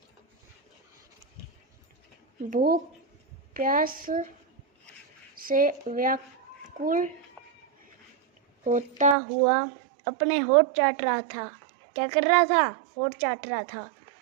भूख प्यास से व्याकुल होता हुआ अपने होठ चाट रहा था। क्या कर रहा था? होठ चाट रहा था।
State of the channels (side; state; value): left; drops out; at 9.2 s